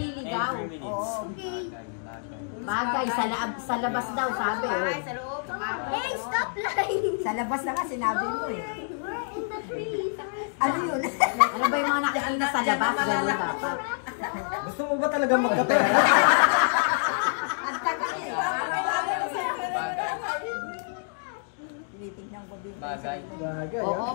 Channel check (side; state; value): right; silent; digital silence